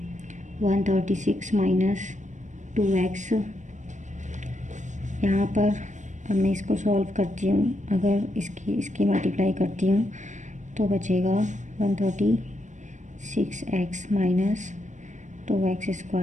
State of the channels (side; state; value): left; late; 0.35 ms